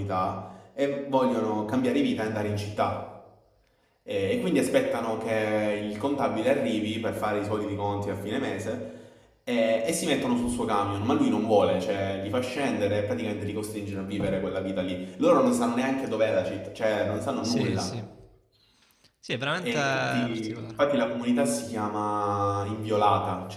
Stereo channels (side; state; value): both; identical; correlation 1.00